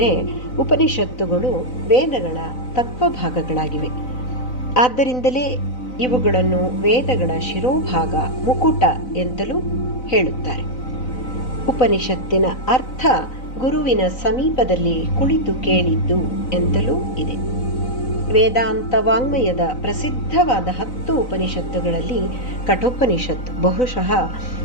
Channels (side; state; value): right; late; 4.0 ms